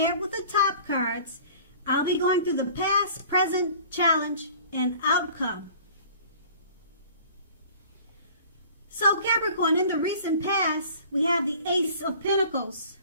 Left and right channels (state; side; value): inverted; both; correlation -0.47